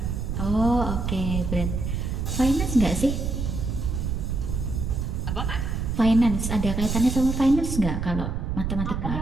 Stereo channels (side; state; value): right; noise; rumble, 2 dB below the sound